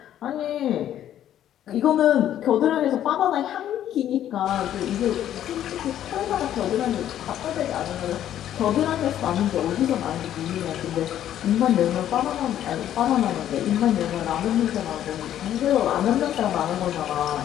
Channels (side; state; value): right; quieter; 11.2 dB